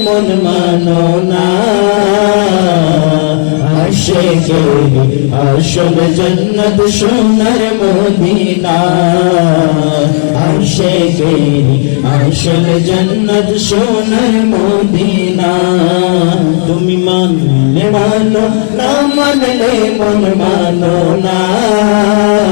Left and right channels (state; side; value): silent; right; digital silence